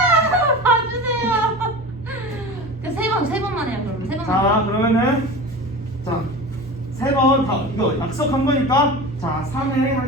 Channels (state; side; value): noise; right; hum, 27 dB below the sound